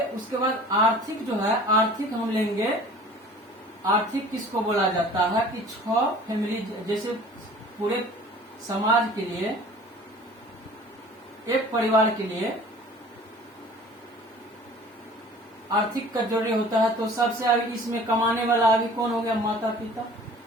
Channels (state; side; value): normal; both; correlation 0.47